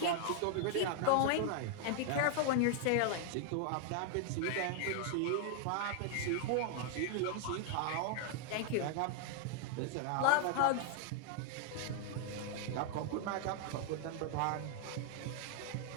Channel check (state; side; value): different; both; correlation 0.00